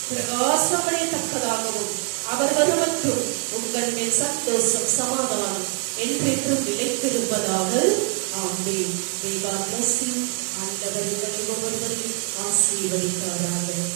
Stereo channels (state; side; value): quieter; left; 36.5 dB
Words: பிரகாசமடையத்தக்கதாகவும் அவர் வருவற்றும் உங்கள் மேல் சந்தோஷம் சமாதானம் என்றென்றும் நிலைத்திருப்பதாக. ஆமென். God bless you. ஆண்டவர் உங்களை ஒவ்வொருவரையும் ஆசீர்வதிப்பாராக.